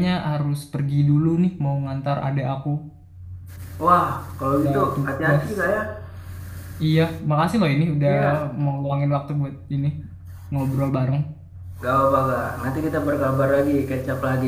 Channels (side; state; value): both; identical; correlation 1.00